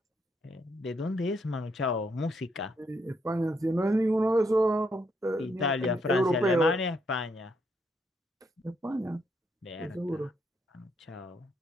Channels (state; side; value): normal; both; correlation 0.75